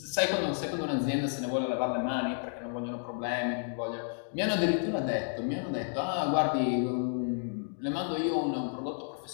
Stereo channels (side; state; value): right; silent; digital silence